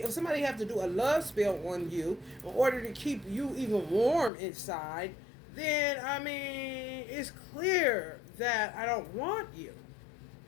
if somebody have to do a love spell on you in order to keep you even warm inside, then, I mean, it's clear that I don't want you.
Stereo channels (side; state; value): right; drops out; at 4.3 s